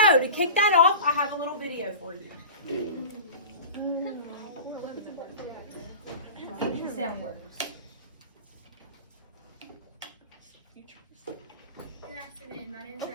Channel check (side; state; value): both; inverted; correlation -0.34